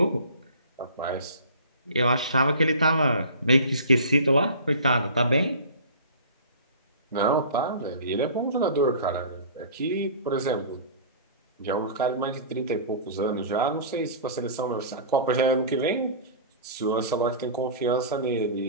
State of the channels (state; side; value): inverted; both; correlation -0.40